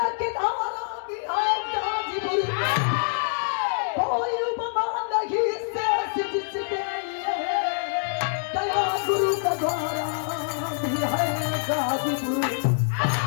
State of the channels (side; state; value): right; silent; digital silence